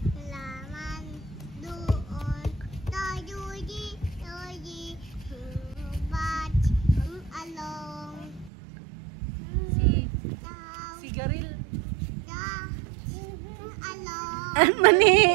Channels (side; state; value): left; drops out; at 8.5 s